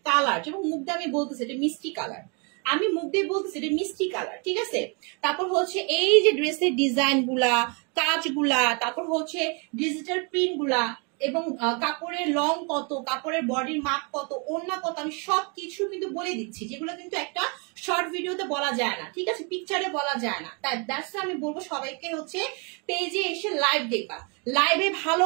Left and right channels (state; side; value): quieter; left; 34.1 dB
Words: কালার, যেমন মুখ দিয়ে আমি বলতেছি এটা মিষ্টি কালার, আমি মুখ দিয়ে বলতেছি এটা মিষ্টি কালার, ঠিক আছে। তারপর হচ্ছে এই যে ড্রেসের ডিজাইন গুলা, কাজগুলা, তারপর হচ্ছে ডিজিটাল প্রিন্ট গুলা, এবং কাপড়ের লং কত, কাপড়ের বডির মাপ কত, ওড়না কত, আমি সবকিছু কিন্তু বলে দিচ্ছি, যেগুলো কিন্তু একটা শর্ট ভিডিওতে বলা যায় না, ঠিক আছে, পিকচারে বলা যায় না। তাই দ্যাটস আমি বলবো সবাইকে হচ্ছে পেজে এসে লাইভ দেখবা, লাইভে ভালো